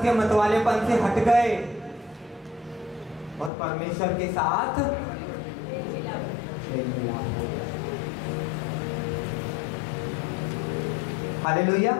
के मतवालेपन से हट गए और परमेश्वर के साथ मेल मिलाप हो गया। Hallelujah,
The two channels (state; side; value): drops out; right; at 3.5 s